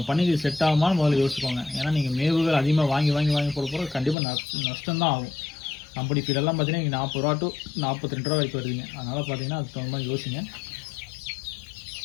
பண்ணைக்கு செட் ஆகுமான்னு முதல்ல யோசிச்சுக்கோங்க. ஏன்னா நீங்கள் மேவுகள் அதிகமாக வாங்கி போட கண்டிப்பாக நஷ்டம் தான் ஆகும். கம்பெனி ஃபீடெல்லாம் பார்த்தீங்கன்னா இங்கே 40 ரூபா டு 42 ரூபா வரைக்கும் வருதுங்க. அதனால் பார்த்தீங்கன்னா அதுக்கு தகுந்த மாதிரி யோசிங்க.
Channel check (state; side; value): drops out; right; at 4.2 s